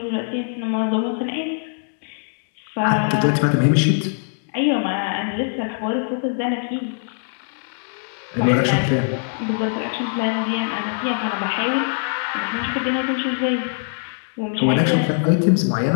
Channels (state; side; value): silent; right; digital silence